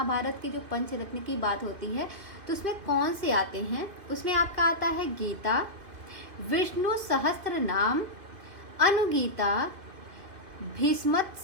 के जो पंचरत्न की बात होती है तो उसमें कौन से आते हैं? उसमें आपका आता है गीता, विष्णु सहस्त्र नाम, अनुगीता,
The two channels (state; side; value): late; left; 2.4 ms